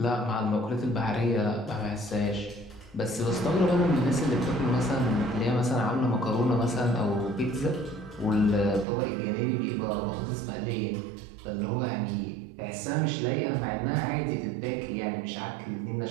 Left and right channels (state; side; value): drops out; left; at 8.8 s